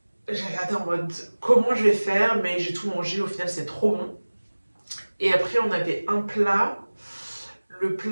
J'ai regardé en mode comment je vais faire, mais j'ai tout mangé, au final c'est trop bon. Et après on avait un plat. Le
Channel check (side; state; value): both; inverted; correlation -1.00